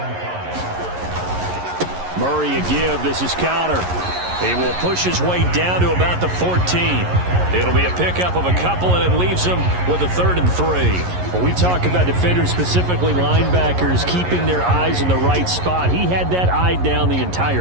Murray a give. This is Connor. He will push his way down to about the 14. It'll be a pickup of a couple, and it leaves him with a 3rd and 3. When we talk about defenders, specifically linebackers, keeping their eyes in the right spot, he had that eye down the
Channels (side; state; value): left; late; 11 ms